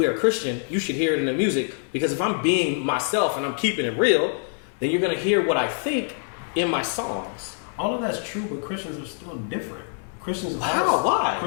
a Christian, you should hear it in the music, because if I'm being myself and I'm keeping it real, then you're going to hear what I think in my songs. All of that's true, but Christians are still different. Christians How? Why?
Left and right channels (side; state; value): right; silent; 62 dB below the other